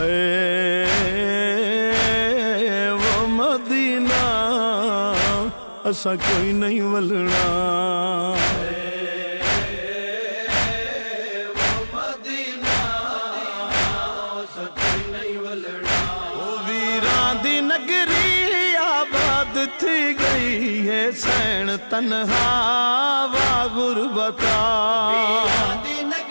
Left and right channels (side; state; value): both; inverted; correlation -1.00